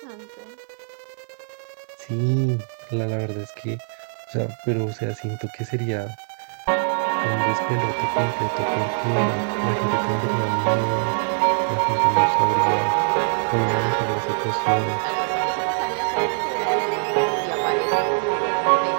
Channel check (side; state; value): left; silent; digital silence